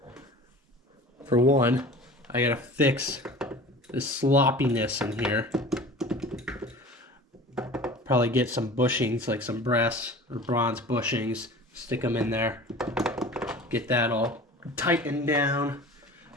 For one, I got to fix this sloppiness in here. Probably get some bushings, like some brass or bronze bushings, stick them in there, get that all tightened down.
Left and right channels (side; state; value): both; normal; correlation 0.40